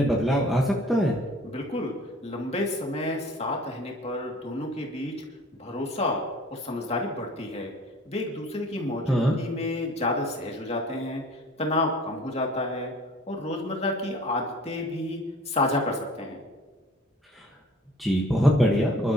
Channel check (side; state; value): both; normal; correlation 0.49